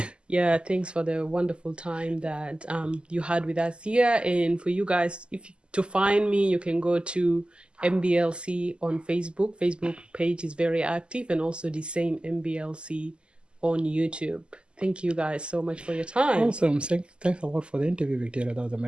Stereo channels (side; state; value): left; late; 0.051 ms